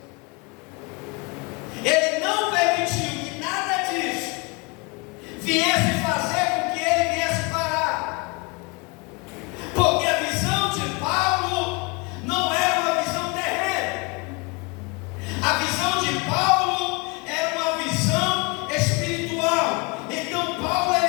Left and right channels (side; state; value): right; quieter; 29.1 dB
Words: Ele não permitiu que nada disso viesse fazer com que ele viesse parar, porque a visão de Paulo não era uma visão terrena. A visão de Paulo era uma visão espiritual. Então Paulo,